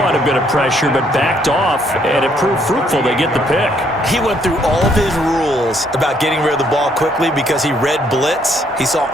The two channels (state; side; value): normal; both; correlation 0.68